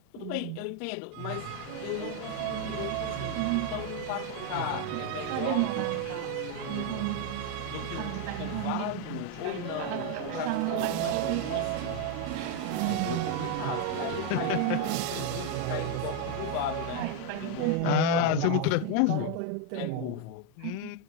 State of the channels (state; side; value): different; both; correlation 0.01